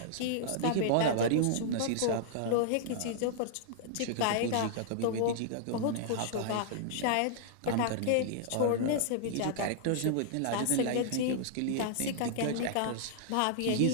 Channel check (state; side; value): different; both; correlation -0.01